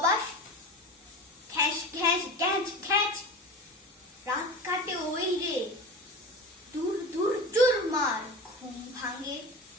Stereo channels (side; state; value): both; normal; correlation 0.31